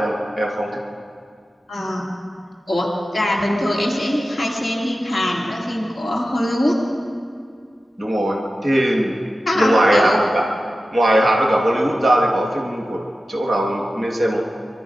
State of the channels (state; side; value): normal; both; correlation 0.94